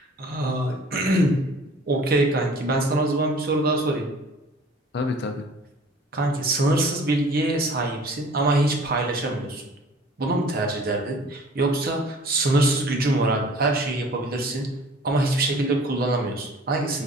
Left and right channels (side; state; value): both; normal; correlation 0.49